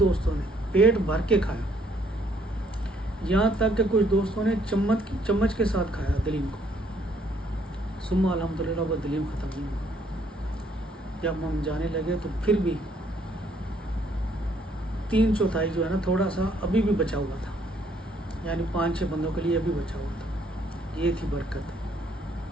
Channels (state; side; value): normal; both; correlation 0.67